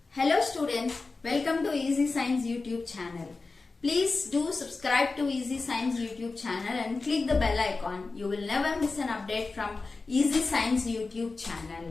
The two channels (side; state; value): right; quieter; 3.9 dB